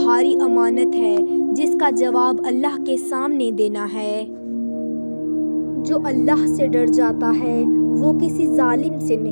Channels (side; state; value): both; inverted; correlation -1.00